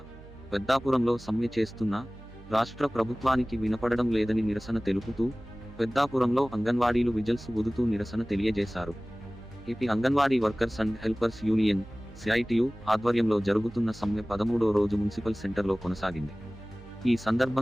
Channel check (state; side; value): noise; right; hum, 19 dB below the sound